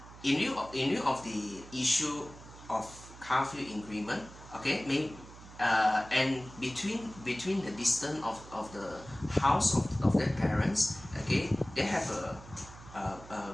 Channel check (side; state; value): right; noise; hum, 18 dB below the sound